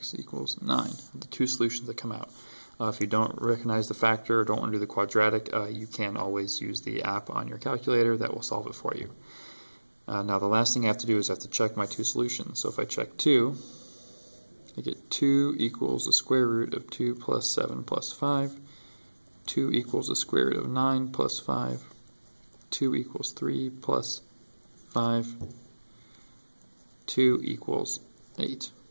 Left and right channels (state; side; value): inverted; both; correlation -1.00